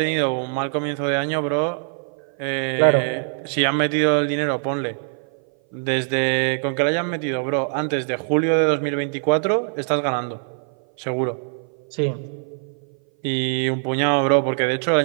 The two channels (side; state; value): left; silent; 57 dB below the other